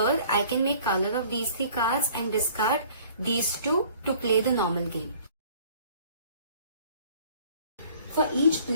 I can make color of these 3 cards and discard these 2 to play the normal game. For each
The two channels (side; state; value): both; inverted; correlation -0.53